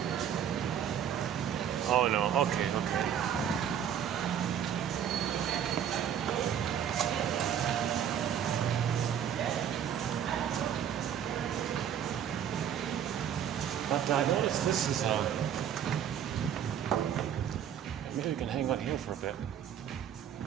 Oh no, okay. But I noticed this is maybe we can hang on here for a bit.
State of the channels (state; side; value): quieter; left; 9.1 dB